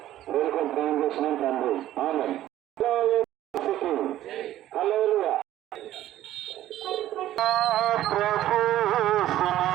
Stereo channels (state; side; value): quieter; left; 13.4 dB